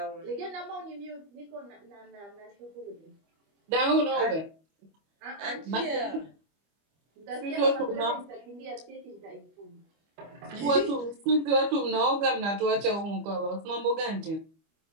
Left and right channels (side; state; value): left; late; 25 ms